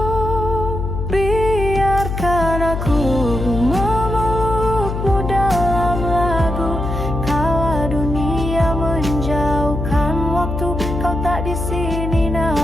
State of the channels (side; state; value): left; noise; hum, 4 dB below the sound